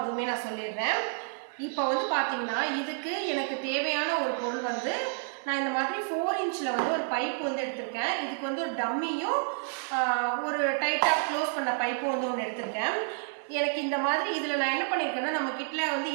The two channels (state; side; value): silent; left; 58 dB below the other